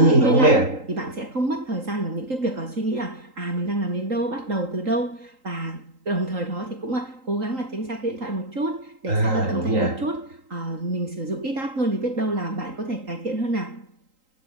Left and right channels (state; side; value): late; left; 3.8 ms